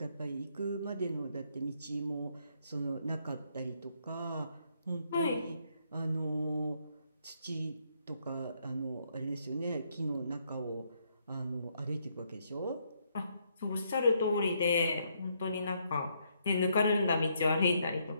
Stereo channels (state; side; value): inverted; both; correlation -0.74